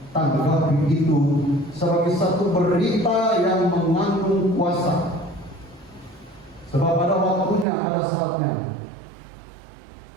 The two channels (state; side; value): drops out; left; at 7.7 s